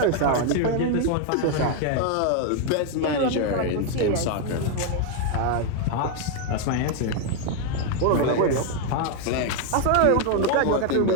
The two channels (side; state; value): both; different; correlation 0.01